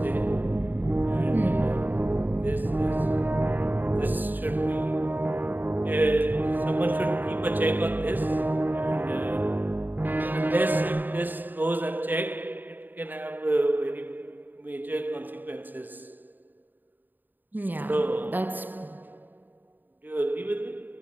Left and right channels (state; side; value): late; left; 0.089 ms